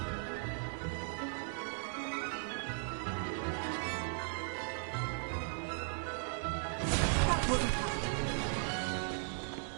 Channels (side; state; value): left; silent; 53 dB below the other